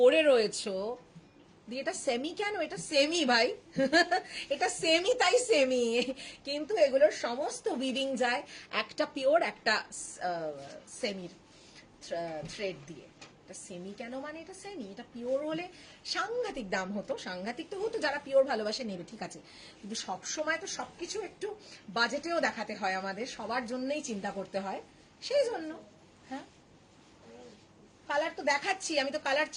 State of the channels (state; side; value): identical; both; correlation 1.00